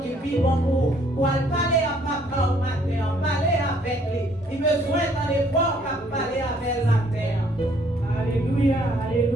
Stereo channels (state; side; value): normal; both; correlation 0.63